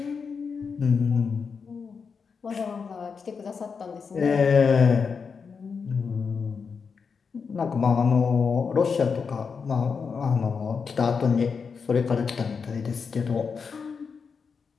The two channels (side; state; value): right; quieter; 5.6 dB